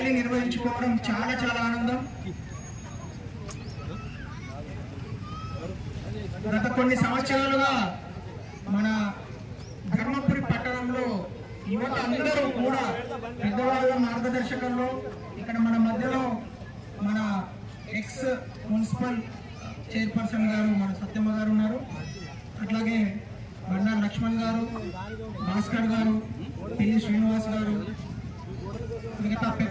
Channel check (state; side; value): identical; both; correlation 1.00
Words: నిర్వహించుకోవడం చాలా ఆనందం. గత కొన్ని సంవత్సరాలుగా మన ధర్మపురి పట్టణంలో యువత అందరూ కూడా పెద్దవాళ్ళ మార్గదర్శకంలో ఇక్కడ మన మధ్యలో మన ఎక్స్ మున్సిపల్ చైర్పర్సన్ గారు మన సత్యమ్మ గారు ఉన్నారు. అట్లాగే బండా లక్ష్మణ్ గారు, భాస్కర్ గారు, పిల్లి శ్రీనివాస్ గారు, మిగతా